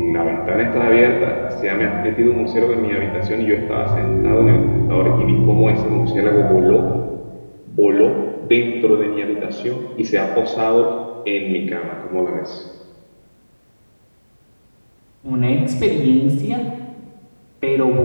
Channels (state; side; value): inverted; both; correlation -1.00